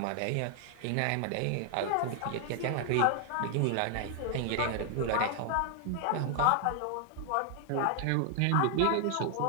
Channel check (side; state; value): both; different; correlation 0.00